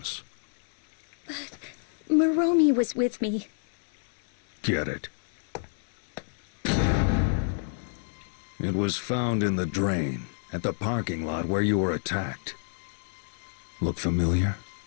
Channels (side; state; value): right; silent; digital silence